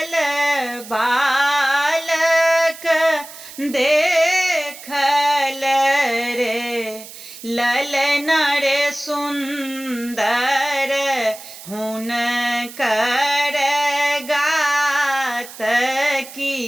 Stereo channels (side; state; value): right; noise; hiss, 15 dB below the sound